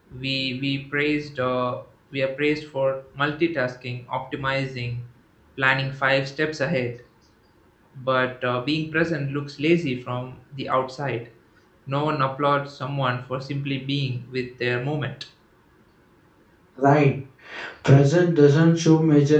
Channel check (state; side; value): identical; both; correlation 1.00